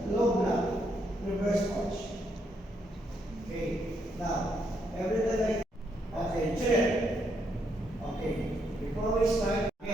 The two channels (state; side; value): normal; both; correlation 0.76